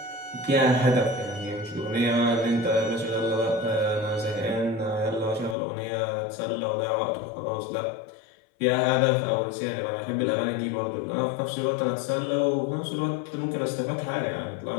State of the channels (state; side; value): drops out; right; at 5.6 s